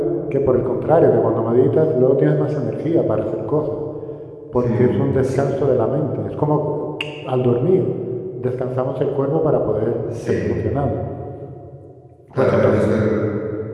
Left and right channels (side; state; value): both; identical; correlation 1.00